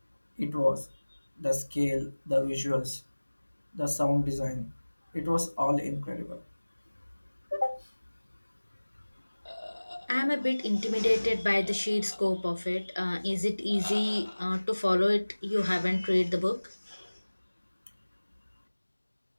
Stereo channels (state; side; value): inverted; both; correlation -1.00